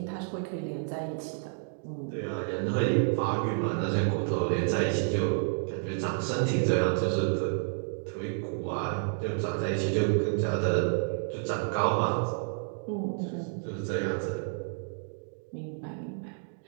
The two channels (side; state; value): left; silent; digital silence